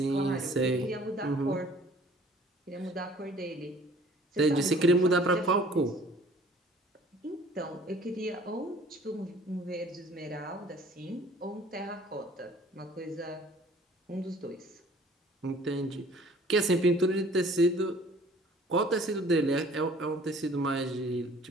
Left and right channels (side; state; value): both; normal; correlation 0.53